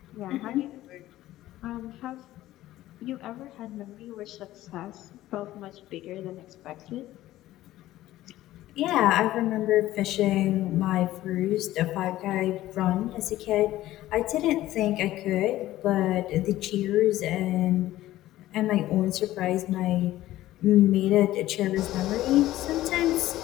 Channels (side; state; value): right; quieter; 15.1 dB